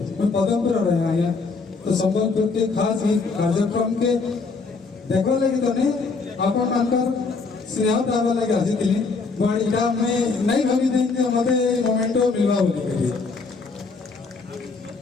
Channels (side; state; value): right; quieter; 4.3 dB